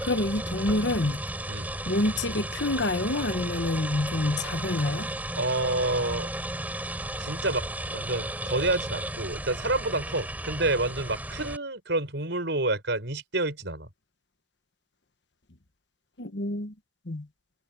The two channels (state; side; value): normal; both; correlation 0.17